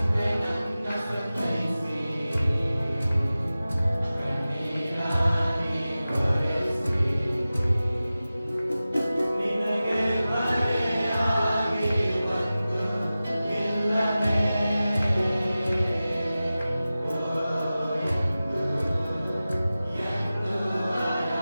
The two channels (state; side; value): inverted; both; correlation -0.96